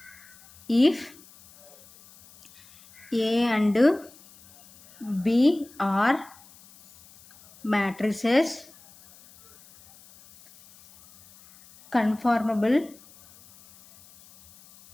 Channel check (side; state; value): left; noise; hiss, 25 dB below the sound